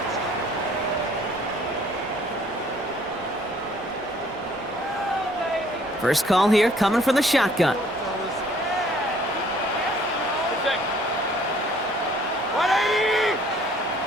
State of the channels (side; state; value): both; normal; correlation 0.59